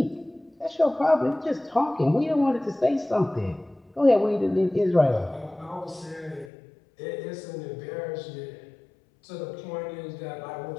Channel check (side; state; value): right; drops out; at 6.5 s